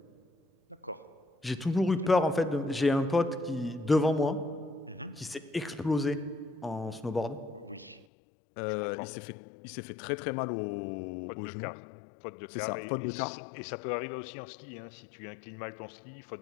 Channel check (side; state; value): right; drops out; at 8.1 s